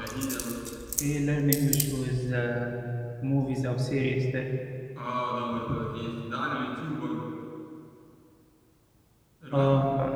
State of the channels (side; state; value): both; identical; correlation 1.00